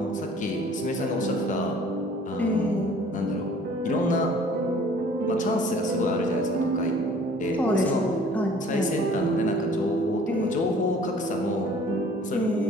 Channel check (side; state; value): both; normal; correlation 0.52